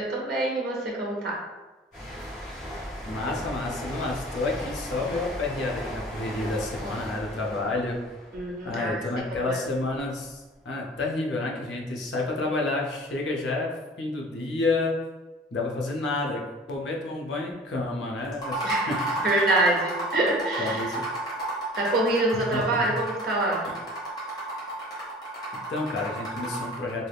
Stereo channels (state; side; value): normal; both; correlation 0.45